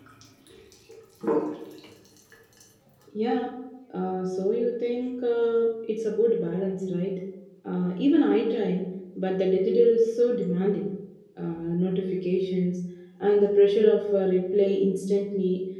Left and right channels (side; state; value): both; identical; correlation 1.00